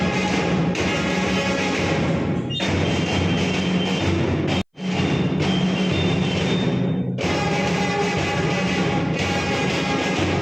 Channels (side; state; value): both; identical; correlation 1.00